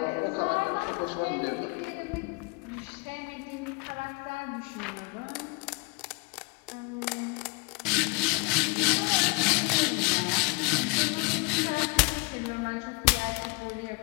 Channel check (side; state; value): right; quieter; 30.4 dB